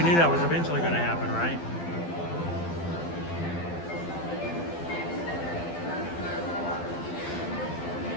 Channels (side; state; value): right; late; 12 ms